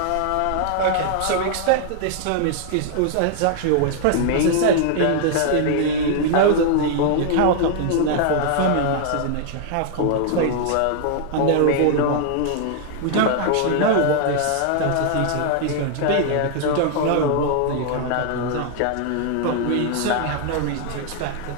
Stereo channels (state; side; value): different; both; correlation 0.00